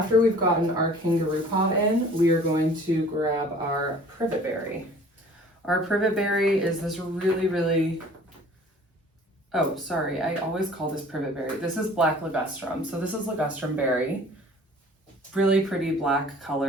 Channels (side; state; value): both; normal; correlation 0.50